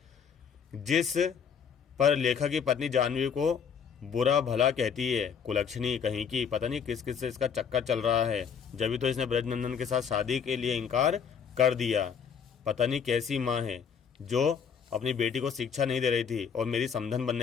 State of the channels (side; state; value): right; quieter; 6.9 dB